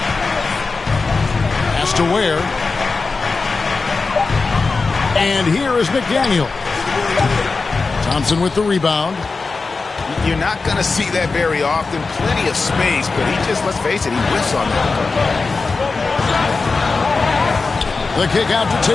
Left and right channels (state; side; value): quieter; right; 4.1 dB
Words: Has to Ware. And here is McDaniel. Thompson with the rebound. You're not going to see that very often. Plenty of space, but he just, let's face it, he whiffs on that. The kick out to